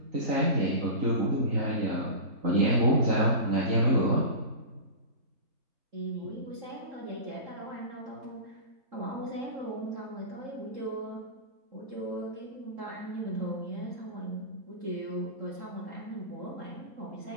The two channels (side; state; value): left; late; 3.8 ms